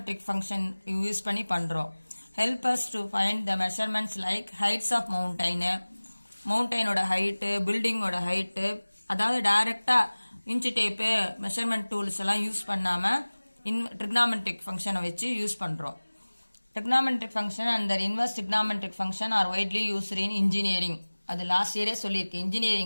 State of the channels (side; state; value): both; inverted; correlation -1.00